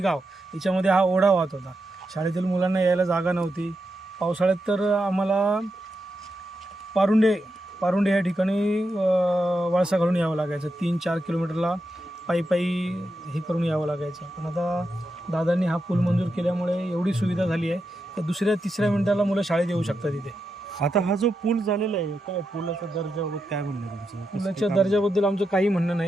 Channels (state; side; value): normal; both; correlation 0.86